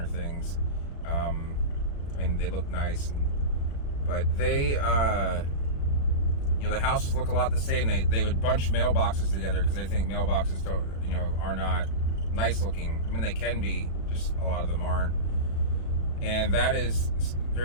things. I mean, they look nice, but they, the houses look a lot the same. They would bunch mailboxes together because they think mailboxes are not nice looking. I mean, they can be, just a lot of them aren't. And that is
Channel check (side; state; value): right; late; 36 ms